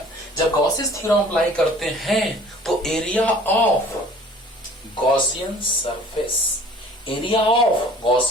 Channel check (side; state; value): both; normal; correlation 0.49